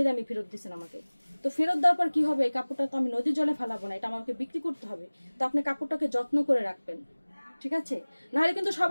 দামি ফেরত দিচ্ছেন আমাকে। তো ফেরত দেওয়ার পর কি হবে, এই কাপড়টা তো আমি নদীর জলে ফেলাবো না, এটা আমাকে বিক্রি করতে হবে। তো আপনি কাপড়টাকে যত্ন করে রাখবেন, ঠিক আছে? নাহলে কিন্তু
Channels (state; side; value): inverted; both; correlation -1.00